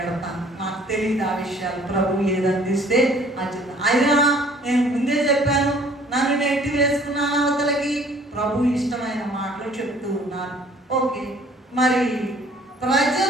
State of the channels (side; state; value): both; normal; correlation 0.55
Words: నాకు తెలియదు ఆ విషయాలు, ప్రభు ఏది అందిస్తే అది. అయినా నేను ముందే చెప్పాను, నన్ను నెట్టి వేసుకున్నాను అవతలకి. ప్రభు ఇష్టమైన మాటలు చెప్తూ ఉన్నాను. ఓకే, మరి ప్రజల